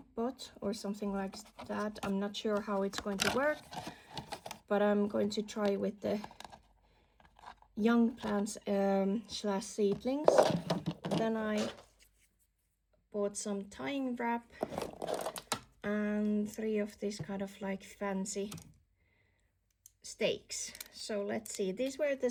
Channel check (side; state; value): both; identical; correlation 1.00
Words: pot or something like that. I'm not sure how it's going to work, but I'm going to try with the young plants slash seedlings. Then I bought some tying wrap and 3 of these kind of like fancy stakes. So let's see, these were the